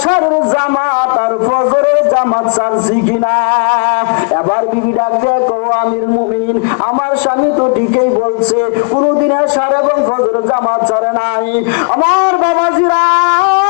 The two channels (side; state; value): right; quieter; 37.0 dB